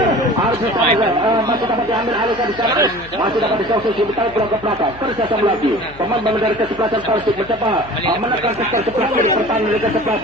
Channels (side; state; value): left; noise; hum, 20 dB below the sound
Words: Arif masih dapat diambil alih ke sana masih dapat disosisi ditarik bola ke belakang kerjasama lagi pemain dari kesebelasan Persib mencoba menekan sektor sebelah kiri pertahanan dari